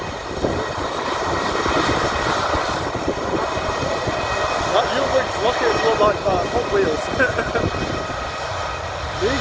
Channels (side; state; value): both; identical; correlation 1.00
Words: That Uwix rockets look like Hot Wheels.